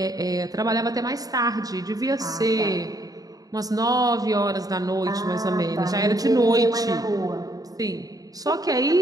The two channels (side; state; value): left; late; 0.18 ms